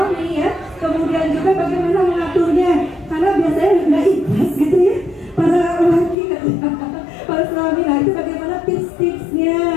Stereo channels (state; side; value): drops out; right; at 6.2 s